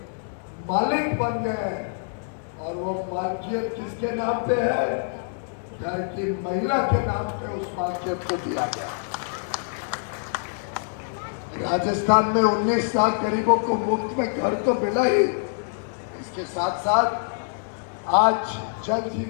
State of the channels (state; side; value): silent; right; digital silence